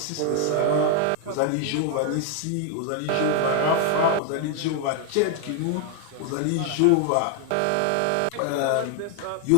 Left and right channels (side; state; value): both; different; correlation 0.00